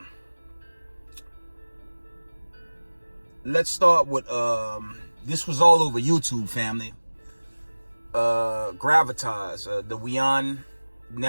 Let's start with this was all over YouTube, family. Gravitas, the WION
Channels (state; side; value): inverted; both; correlation -1.00